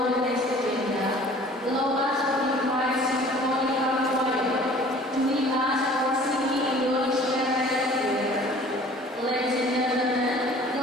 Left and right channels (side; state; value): both; normal; correlation 0.49